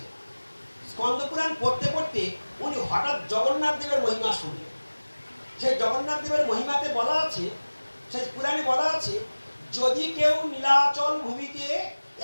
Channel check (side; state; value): both; inverted; correlation -1.00